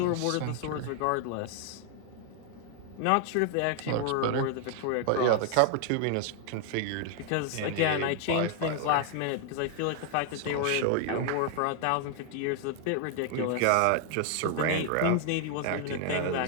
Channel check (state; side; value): different; both; correlation 0.00